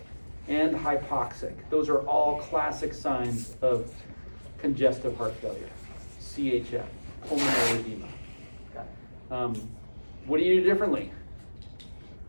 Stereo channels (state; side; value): inverted; both; correlation -1.00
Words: and hypoxic. Those are all classic signs of congestive heart failure, CHF, pulmonary edema. What do you do differently?